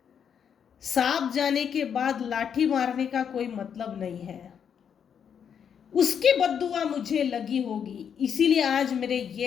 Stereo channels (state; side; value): quieter; right; 7.8 dB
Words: सांप जाने के बाद लाठी मारने का कोई मतलब नहीं है। उसकी बद्दुआ मुझे लगी होगी, इसीलिए आज मेरे